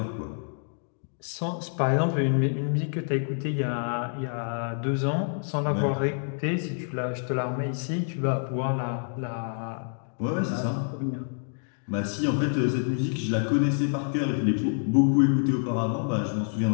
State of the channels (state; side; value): silent; right; digital silence